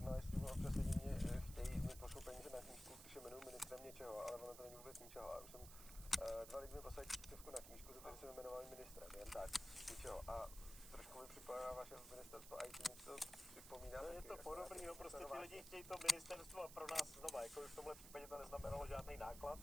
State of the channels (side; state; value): right; noise; hiss, 12 dB below the sound